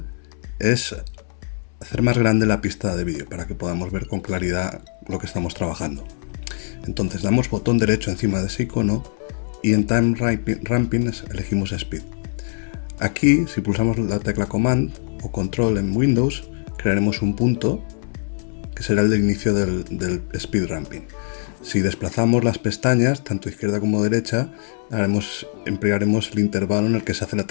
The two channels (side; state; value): right; silent; 64 dB below the other